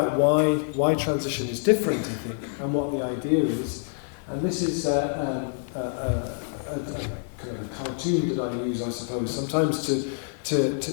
why transition is different, I think, and what the idea is. And this is a kind of a cartoon that I use, I suppose, sometimes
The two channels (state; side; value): silent; right; digital silence